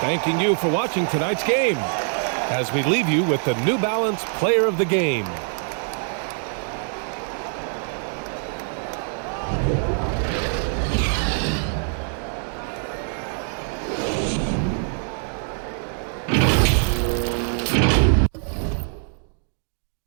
you for watching tonight's game as we leave you with the New Balance Player of the Game.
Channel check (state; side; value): silent; left; 55 dB below the other